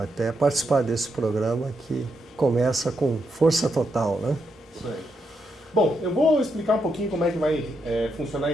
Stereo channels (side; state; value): both; normal; correlation 0.81